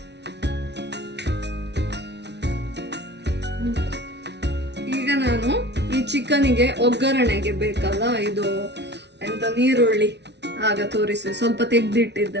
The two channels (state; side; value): late; left; 0.50 ms